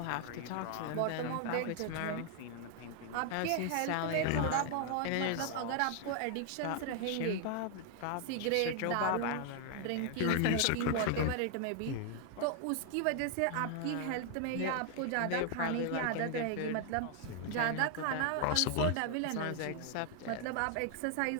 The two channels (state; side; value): different; both; correlation 0.00